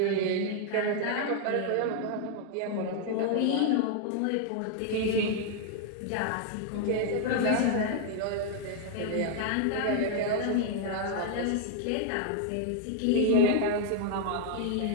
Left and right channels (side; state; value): both; different; correlation 0.00